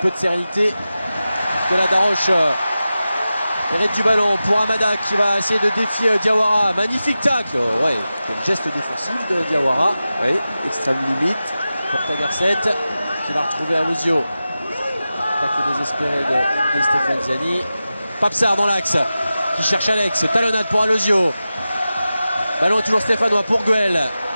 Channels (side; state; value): both; inverted; correlation -0.94